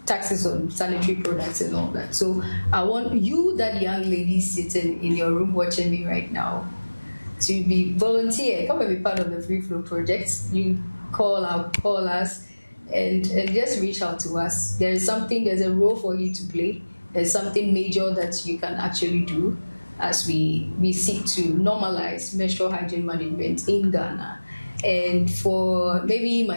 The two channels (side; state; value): both; inverted; correlation -1.00